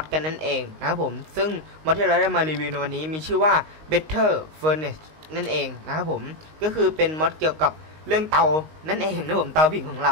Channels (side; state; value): left; late; 19 ms